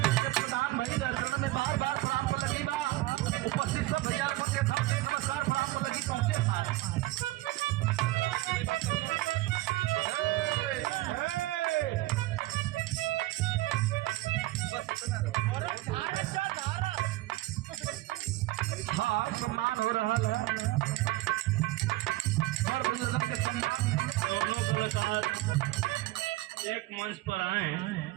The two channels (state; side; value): quieter; left; 18.1 dB